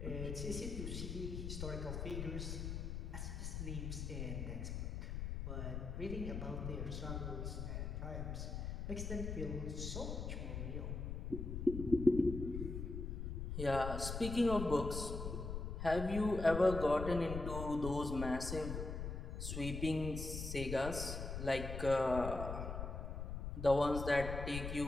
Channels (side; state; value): left; noise; rumble, 4 dB below the sound